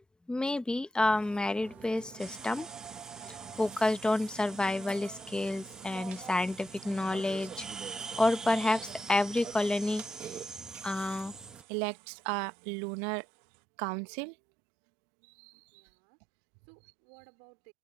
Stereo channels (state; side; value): drops out; left; at 11.6 s